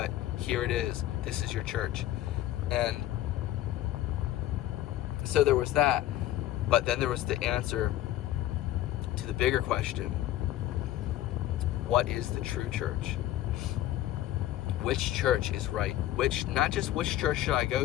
Here it is. This is your church. And so there was that. But then there was the answer to the bigger question. What is the true church? Which church is right? Not just which church should I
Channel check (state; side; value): quieter; right; 13.8 dB